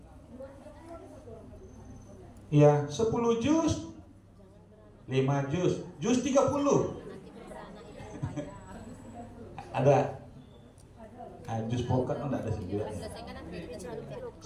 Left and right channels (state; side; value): identical; both; correlation 1.00